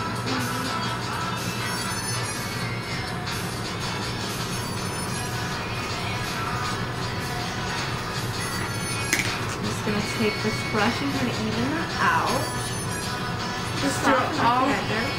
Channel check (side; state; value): both; identical; correlation 1.00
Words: Gonna take this brush and kind of even that out. Just do it all.